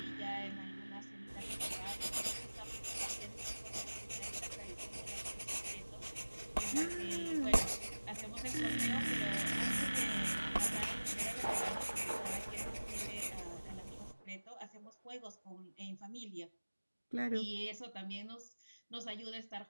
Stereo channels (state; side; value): inverted; both; correlation -1.00